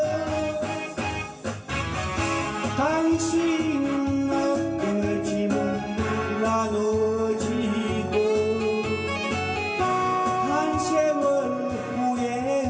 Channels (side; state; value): both; identical; correlation 1.00